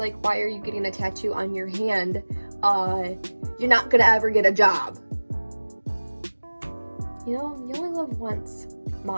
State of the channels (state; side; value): inverted; both; correlation -1.00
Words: why are you getting a tattoo on your hand? You're not gonna ever get a job. You know, you only live once,